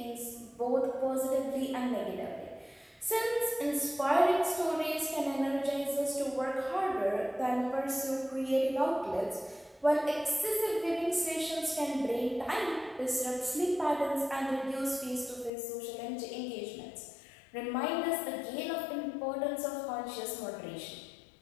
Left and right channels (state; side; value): drops out; right; at 15.5 s